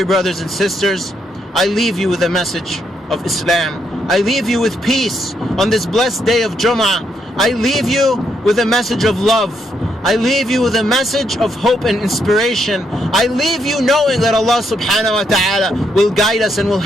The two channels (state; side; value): normal; both; correlation 0.77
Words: brothers and sisters, I leave you with a message of Islam. I leave you with peace on this blessed day of Jum'ah. I leave you with a message of love. I leave you with a message of hope and inspiration. I leave you knowing that Allah subhanahu wa ta'ala will guide us and will